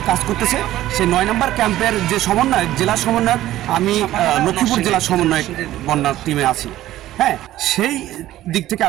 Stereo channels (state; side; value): quieter; left; 14.4 dB